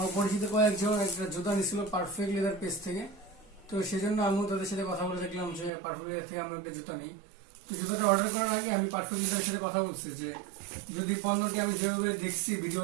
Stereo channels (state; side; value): drops out; left; at 5.7 s